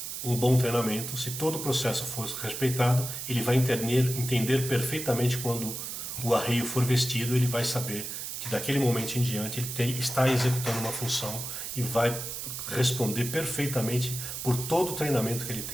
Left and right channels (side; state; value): right; noise; hiss, 6 dB below the sound